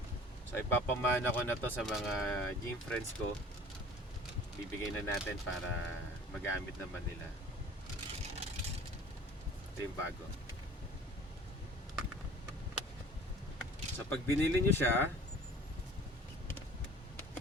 So ipapamana ko na to sa mga gym friends ko. Bibigay na natin para magamit naman nila. Ito yung bago. So pag binili nyo siya,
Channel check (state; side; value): normal; both; correlation 0.46